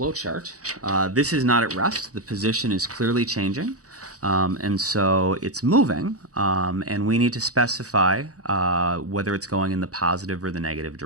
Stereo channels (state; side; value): late; left; 0.66 ms